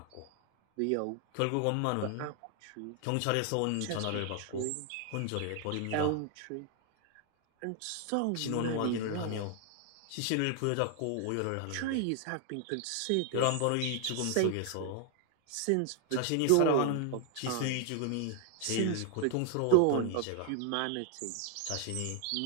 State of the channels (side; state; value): both; different; correlation 0.00